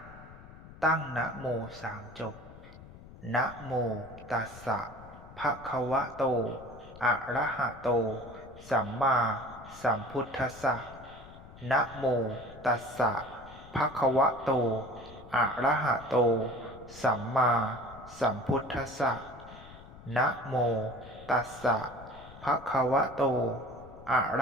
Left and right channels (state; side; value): noise; left; rumble, 18 dB below the sound